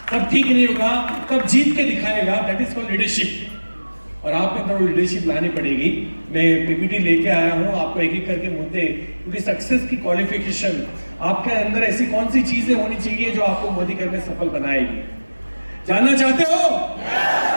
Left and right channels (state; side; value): inverted; both; correlation -1.00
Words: तब ठीक नहीं होगा तब जीत के दिखाएगा, दैट इज कॉल्ड लीडरशिप। और आपके अंदर लीडरशिप लानी पड़ेगी। मैं पीपीटी लेके आया हूं आपको एक एक करके मुद्दे, क्योंकि सक्सेस की क्वालिफिकेशन आपके अंदर ऐसी कौन सी चीजें होनी चाहिए जो आपको मोदी घर में सफल बनाएगी। जानना चाहते हो?